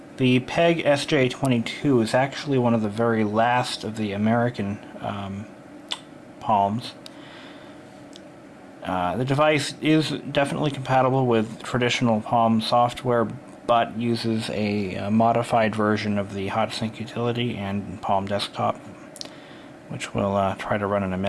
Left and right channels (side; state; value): both; identical; correlation 1.00